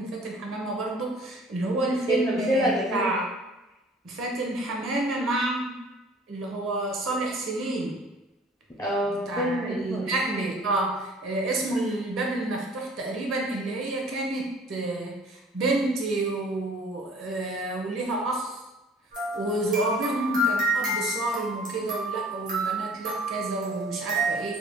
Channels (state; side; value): normal; both; correlation 0.51